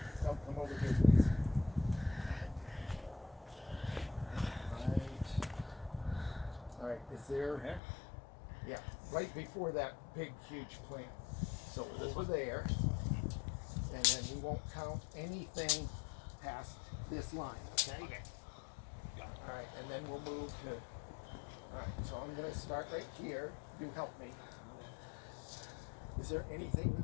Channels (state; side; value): drops out; right; at 7.8 s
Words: come over here, please. All right, is there? Yeah, right before that big, huge plant. So over there, and then we won't count anything past this line, okay? All right, and then we'll move to. All right, so I'm going to start right here. You help me. Is there anything